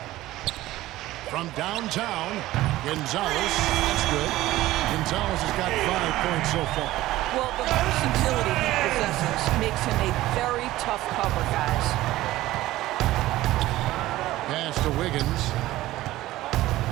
From downtown, Gonzales. That's good. Gonzales has got 5 points so far. Well, the versatility he possesses makes him a very tough cover, guys. Pass to Wiggins.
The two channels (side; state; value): left; quieter; 16.3 dB